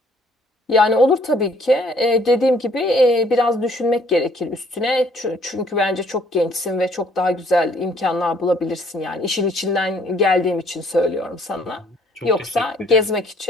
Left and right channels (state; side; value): normal; both; correlation 0.62